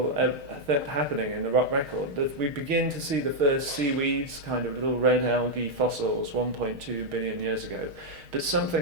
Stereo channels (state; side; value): late; left; 6.4 ms